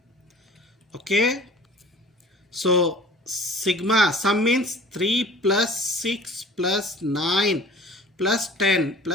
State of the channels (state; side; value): normal; both; correlation 0.46